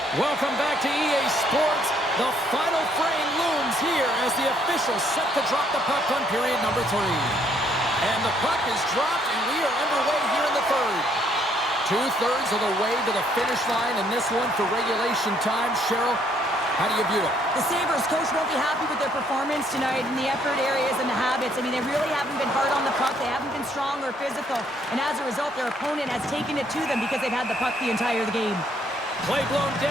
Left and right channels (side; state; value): both; normal; correlation 0.67